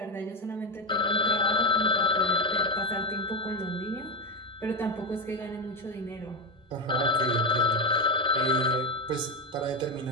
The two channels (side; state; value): both; normal; correlation 0.10